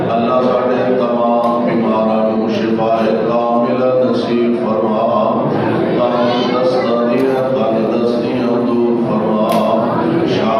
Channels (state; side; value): identical; both; correlation 1.00